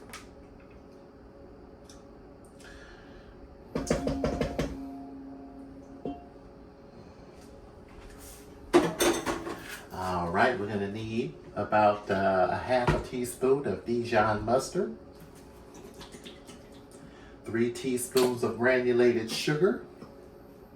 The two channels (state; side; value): identical; both; correlation 1.00